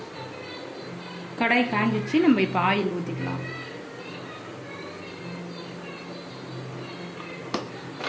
கடாய் காஞ்சிச்சு, நம்ம இப்போ ஆயில் ஊற்றிக்கலாம்.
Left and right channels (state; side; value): identical; both; correlation 1.00